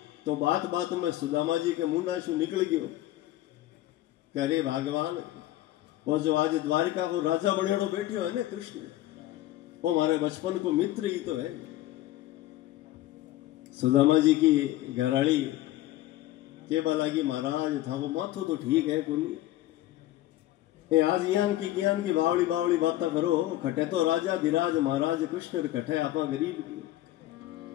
तो बात बात में सुदामा जी के मुंडाशु निकल गयो। करे भगवान वो जो आज द्वारिका को राजा बनेड़ो बैठे है ना कृष्ण, वो हमारे बचपन को मित्र ही तो है। सुदामा जी की घराड़ी के बाला की महाराज था वो माथो तो ठीक है कुनी, आज ज्ञान की बावली बावली बातें करो। खटे तो राजा धीराज महाराज कृष्ण कटे आपा गरीब की।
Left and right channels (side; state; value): right; quieter; 15.1 dB